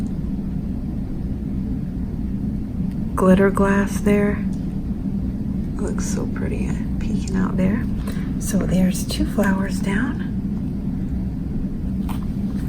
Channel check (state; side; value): identical; both; correlation 1.00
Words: glitter glass there. Looks so pretty peeking out there. So there's 2 flowers down.